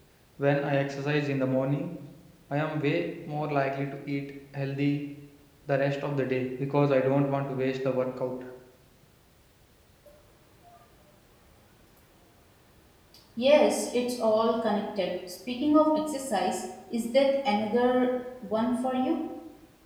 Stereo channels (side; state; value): both; identical; correlation 1.00